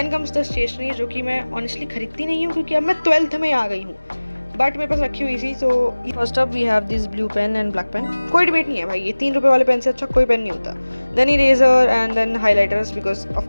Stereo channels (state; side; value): inverted; both; correlation -1.00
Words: कम्स द स्टेशनरी, जो कि मैं ऑनेस्टली खरीदती नहीं हूँ क्योंकि अब मैं 12th में आ गई हूँ, बट मेरे पास रखी हुई थी। So first up we have this blue pen and black pen. कोई डिबेट नहीं है भाई, ये 3 रुपये वाले पेन से अच्छा कोई पेन नहीं होता। Then eraser and then highlighters, because of